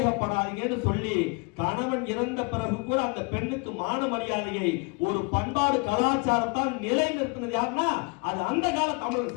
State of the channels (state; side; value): quieter; right; 31.7 dB